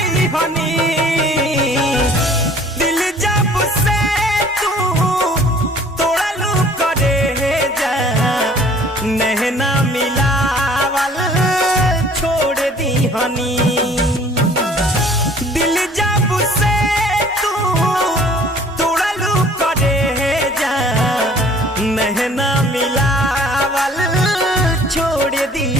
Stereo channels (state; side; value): normal; both; correlation 0.53